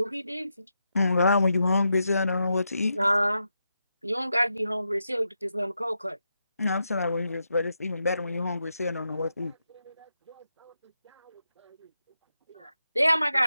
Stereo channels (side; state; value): both; inverted; correlation -0.86